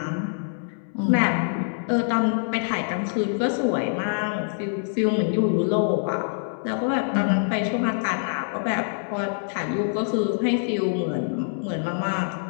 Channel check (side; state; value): right; silent; digital silence